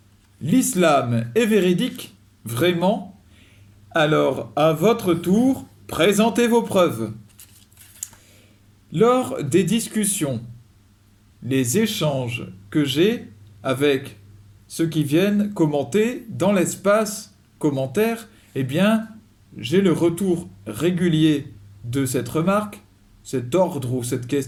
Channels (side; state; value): both; identical; correlation 1.00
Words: l'islam est véridique? Vraiment? Alors, à votre tour, présentez vos preuves. Lors des discussions, les échanges que j'ai avec ceux qui viennent commenter dans l'espace commentaire, eh bien, j'ai le retour régulier de cette remarque, cet ordre ou cette